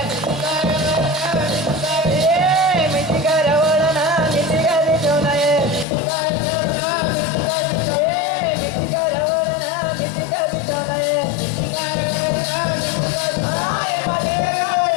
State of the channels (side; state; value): right; drops out; at 5.9 s